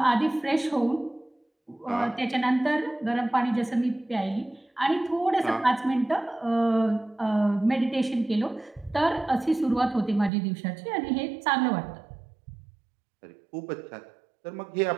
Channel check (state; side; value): drops out; left; at 10.3 s